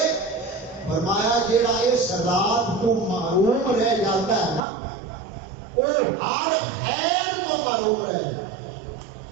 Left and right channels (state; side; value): drops out; left; at 4.6 s